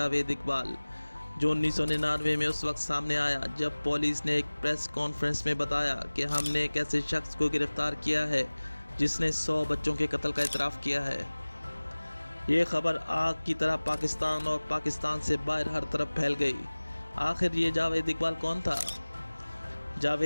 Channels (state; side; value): inverted; both; correlation -1.00